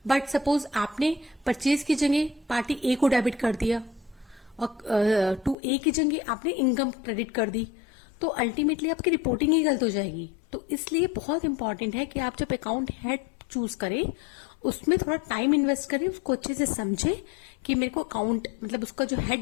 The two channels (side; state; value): right; drops out; at 5.6 s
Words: But suppose आपने परचेज की जगह पार्टी ए को डेबिट कर दिया और टू ए की जगह आपने इनकम क्रेडिट कर दी, तो अल्टीमेटली आपकी रिपोर्टिंग ही गलत हो जाएगी। तो इसलिए बहुत इंपॉर्टेंट है कि आप जब अकाउंट हेड चूज करें उसमें थोड़ा टाइम इन्वेस्ट करें, उसको अच्छे से समझे कि मेरे को अकाउंट मतलब उसका जो